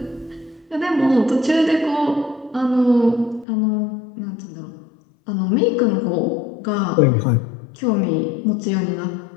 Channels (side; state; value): right; drops out; at 3.5 s